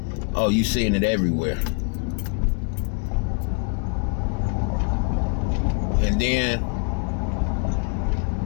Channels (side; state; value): right; quieter; 38.3 dB